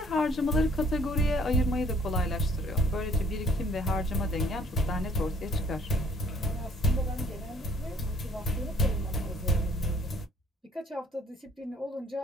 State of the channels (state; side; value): normal; both; correlation 0.60